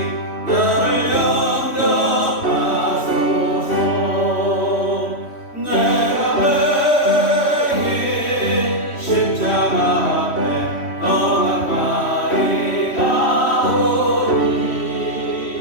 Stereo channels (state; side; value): late; right; 3.1 ms